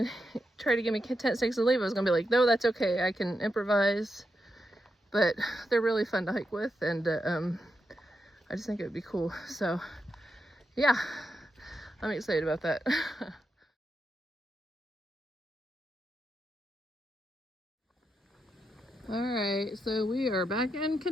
try to give me tent stakes and leave, I was gonna be like, no, that's okay, I can improvise. But they're really fun to hike with, and I just think it would be cool. So yeah, I'm excited about that. All right, so we are back in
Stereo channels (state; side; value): normal; both; correlation 0.85